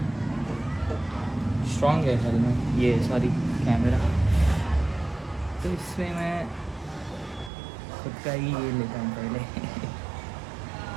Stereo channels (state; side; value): drops out; left; at 7.5 s